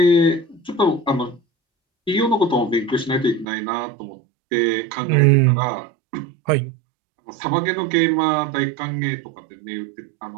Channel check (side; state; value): left; drops out; at 3.5 s